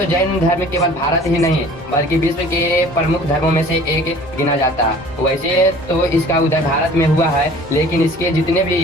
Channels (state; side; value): normal; both; correlation 0.48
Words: जैन धर्म केवल भारत ही नहीं बल्कि विश्व के प्रमुख धर्मों में से एक गिना जाता है। वैसे तो इसका उदय भारत में हुआ है, लेकिन इसके जितने